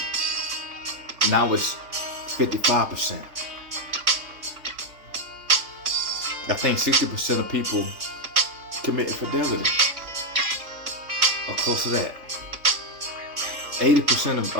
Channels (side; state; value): left; late; 3.5 ms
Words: Now it's 55%. I think 60% of people commit infidelity, or close to that. 80%